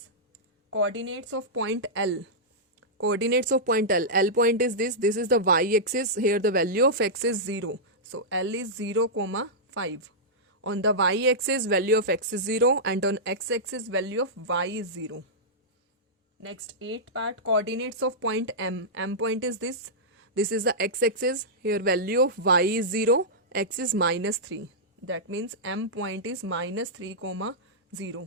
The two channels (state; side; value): normal; both; correlation -0.12